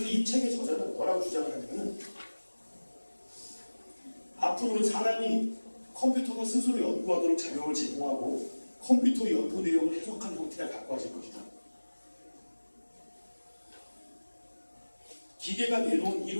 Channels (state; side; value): inverted; both; correlation -1.00